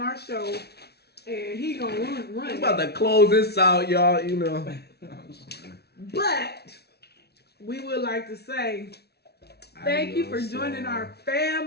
our show and he gonna run. I'm about to close this out, y'all. You know. But we would like to say thank you for joining our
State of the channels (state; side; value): late; right; 0.48 ms